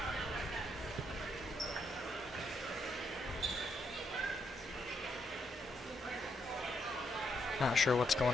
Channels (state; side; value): normal; both; correlation 0.77